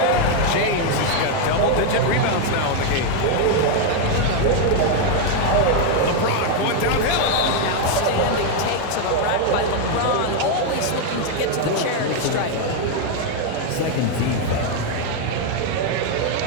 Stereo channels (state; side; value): different; both; correlation 0.01